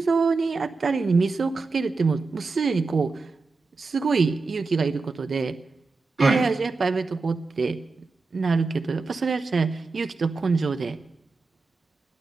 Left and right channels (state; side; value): quieter; left; 4.0 dB